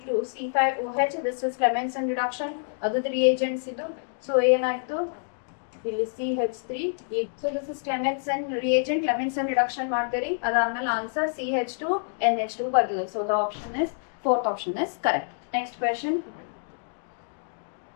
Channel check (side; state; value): right; silent; digital silence